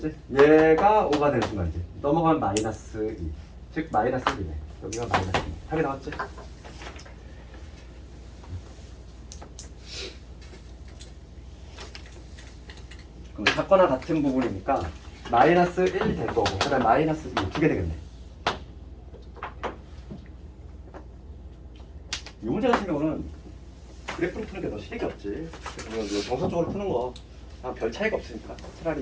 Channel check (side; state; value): both; identical; correlation 1.00